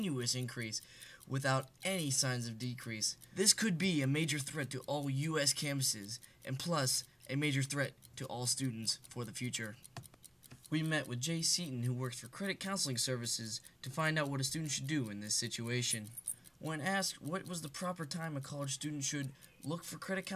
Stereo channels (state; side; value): normal; both; correlation 0.98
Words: increase without any signs of decrease. This could be a major threat to all U.S. campuses, and plus, a major threat to all students for the future. We met with Jay Seaton, who works for Credit Counseling Services, to find out what a student should do in this situation. When asked what was the proper time a college student should look for credit